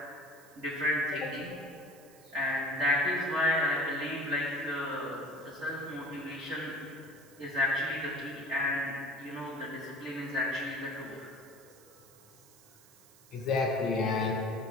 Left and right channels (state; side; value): noise; right; hiss, 24 dB below the sound